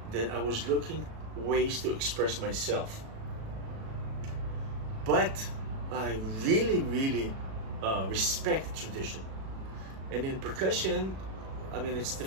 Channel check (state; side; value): late; left; 37 ms